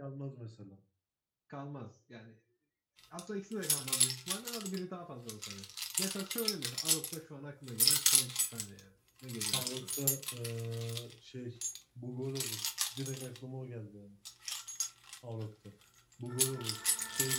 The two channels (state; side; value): identical; both; correlation 1.00